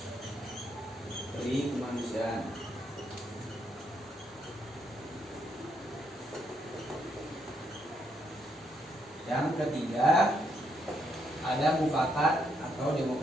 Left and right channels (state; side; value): normal; both; correlation 0.76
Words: Yang ketiga, ada mufakat atau